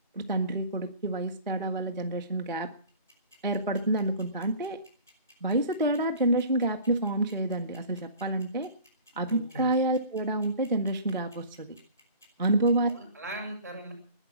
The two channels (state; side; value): inverted; both; correlation -0.44